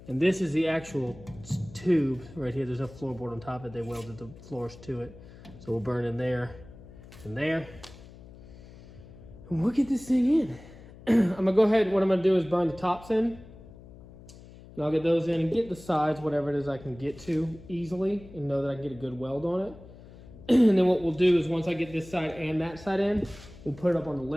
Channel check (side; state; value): left; noise; hum, 19 dB below the sound